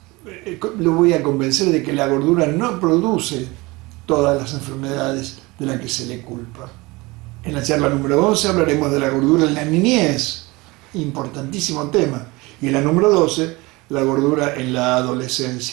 Lo voy a convencer de que la gordura no produce todas las enfermedades de las que se le culpa. En la charla número 11 hablaremos de la gordura en la niñez, importantísimo tema. Y en la número 12, la gordura en la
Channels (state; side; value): quieter; left; 23.2 dB